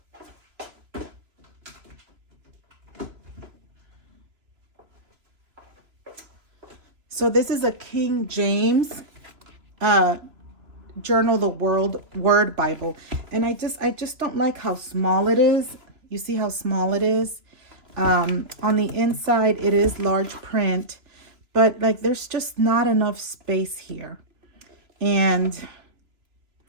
So this is a King James Journal the Word Bible. And I just don't like how small it is. You see how small it is? On the inside, it is large print, but like there's just not enough space here. And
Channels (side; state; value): left; late; 2.8 ms